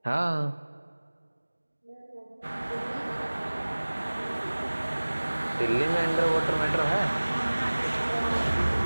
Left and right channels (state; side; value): inverted; both; correlation -1.00